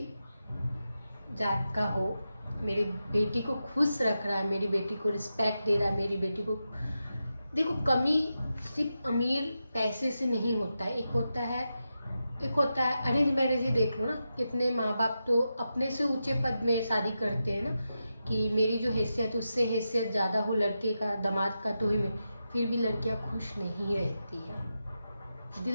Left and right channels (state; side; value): inverted; both; correlation -0.89